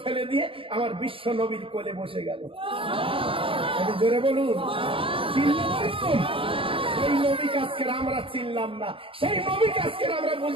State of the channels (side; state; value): left; late; 0.26 ms